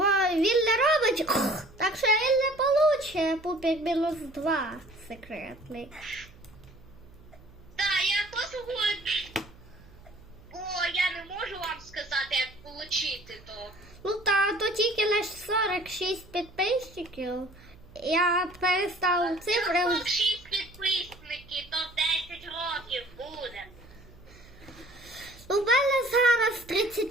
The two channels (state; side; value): noise; right; hum, 23 dB below the sound